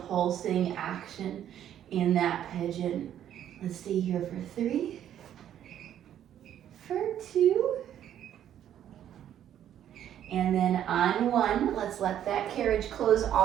pulsing action in that pigeon. Let's stay here for 3, for 2, and then on 1, let's let that carriage close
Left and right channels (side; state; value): left; quieter; 10.6 dB